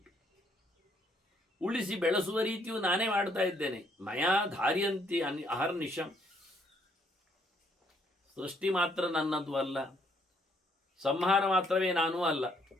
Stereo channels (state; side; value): normal; both; correlation 0.69